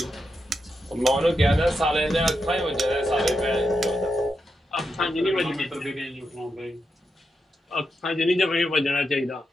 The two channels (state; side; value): normal; both; correlation 0.85